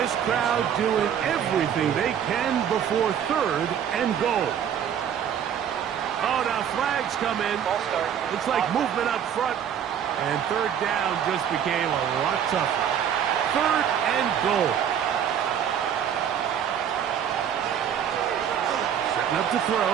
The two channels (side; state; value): left; quieter; 8.9 dB